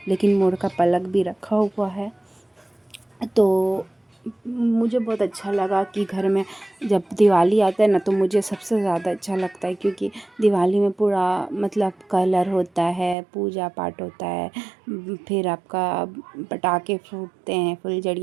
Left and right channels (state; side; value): drops out; left; at 13.2 s